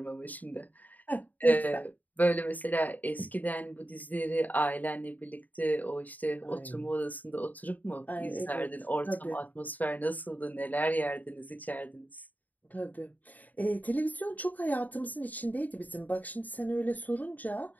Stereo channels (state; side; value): late; right; 0.080 ms